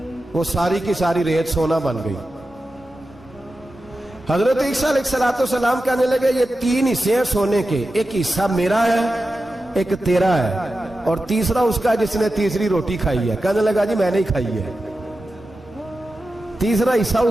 वो सारी की सारी रेत सोना बन गई। हजरत ईसा अलैहिस्सलाम कहने लगे ये 3 हिस्से हैं सोने के, एक हिस्सा मेरा है, एक तेरा है, और तीसरा उसका जिसने तीसरी रोटी खाई है। कहने लगा जी मैंने ही खाई है। तीसरा हिस्सा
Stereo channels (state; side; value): normal; both; correlation 0.92